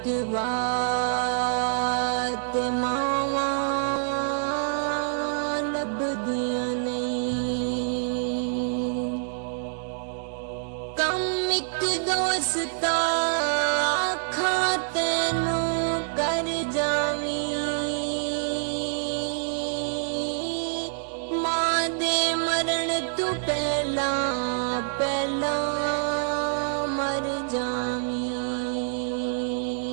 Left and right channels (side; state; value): left; silent; digital silence